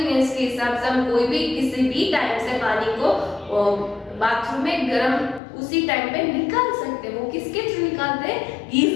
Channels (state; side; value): drops out; right; at 5.4 s